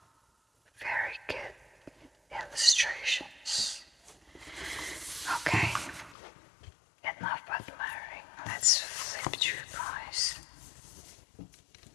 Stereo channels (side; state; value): right; drops out; at 6.2 s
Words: Very good illustrations. Okay, enough admiring. Let's flip through, guys.